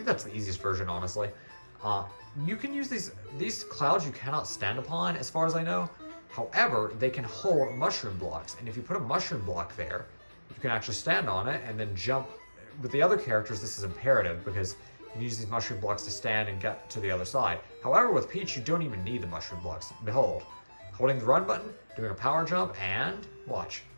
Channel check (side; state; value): both; inverted; correlation -1.00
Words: that's the easiest version, honestly. You can use these clouds you cannot stand upon, as far as I know. However, they can hold mushroom blocks, and if you put a mushroom block there, you can actually stand on it and then jump. With the other characters, this is imperative because you can use these mushroom blocks to stand and get to the other side. However, with Peach, you don't even need the mushroom blocks. Behold, holding the run button, doing a power jump, and watch.